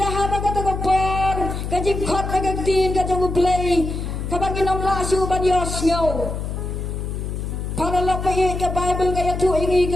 haba katagapor. Kajing kot nagagtin kajang ublay. Kabagin ang laso banyos ngaw. Para lapay ka Bible kaya tu ingi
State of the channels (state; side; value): noise; left; hum, 4 dB below the sound